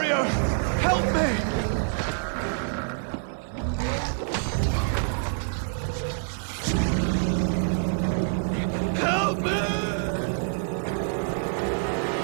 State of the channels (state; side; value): silent; left; digital silence